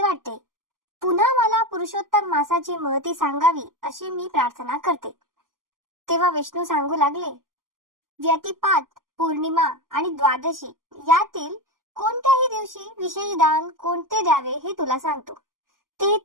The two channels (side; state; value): left; late; 0.91 ms